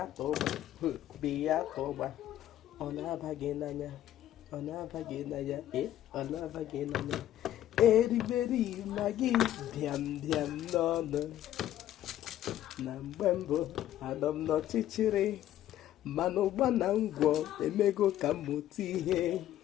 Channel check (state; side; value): quieter; right; 12.6 dB